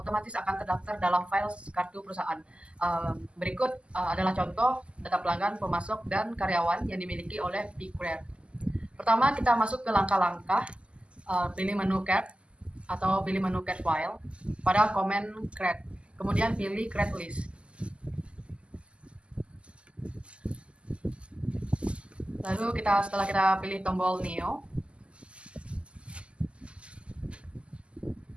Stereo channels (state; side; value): late; left; 0.054 ms